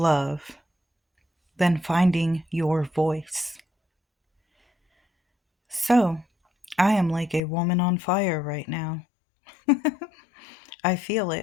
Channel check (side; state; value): right; drops out; at 7.4 s